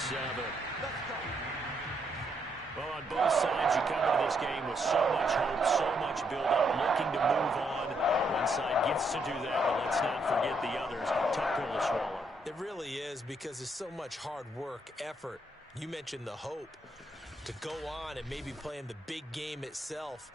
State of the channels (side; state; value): both; normal; correlation 0.75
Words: Well, on both sides, you come into this game with so much hope, so much build-up, looking to move on. One side gets to do that, but let's not forget the others. Tough pill to swallow. It really is, because there's so much hard work, effort. You mentioned the hope to go on and maybe play in the big game itself.